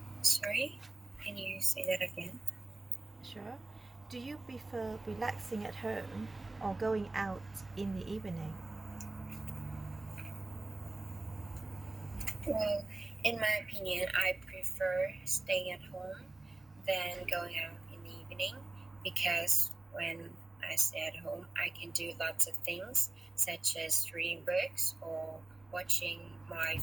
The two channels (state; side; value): quieter; left; 3.1 dB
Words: Sorry, can you say that again? Sure. Do you prefer relaxing at home or going out in the evening? Well, in my opinion, I prefer staying at home than going out in the evening because when I stay at home, I can do lots of things such as reading books or watching my